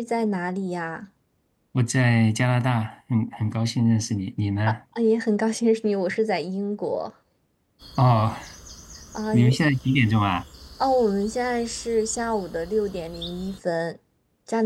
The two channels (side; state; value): both; identical; correlation 1.00